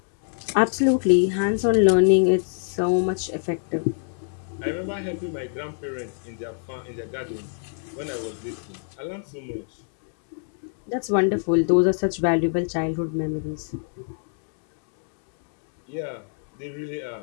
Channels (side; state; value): right; silent; 61 dB below the other